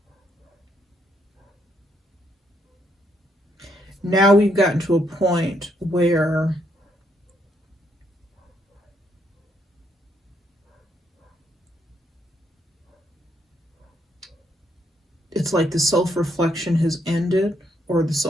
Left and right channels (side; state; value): both; normal; correlation 0.74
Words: Now we've gotten to a point where it's like the self-reflection has ended, or the